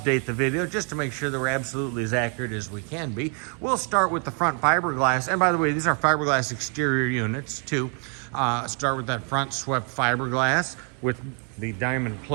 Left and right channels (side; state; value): left; quieter; 39.5 dB